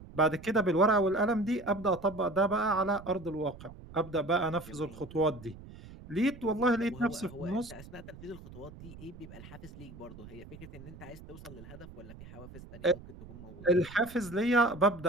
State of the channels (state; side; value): noise; right; rumble, 16 dB below the sound